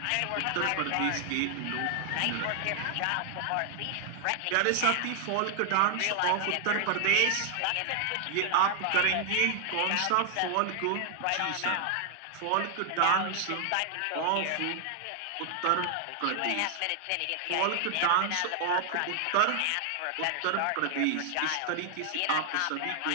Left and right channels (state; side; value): different; both; correlation 0.00